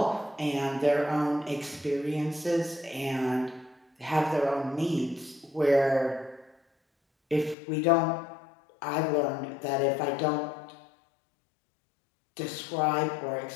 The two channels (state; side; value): drops out; right; at 7.6 s